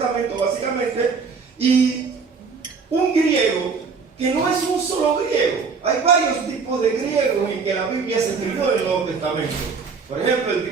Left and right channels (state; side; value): quieter; left; 5.1 dB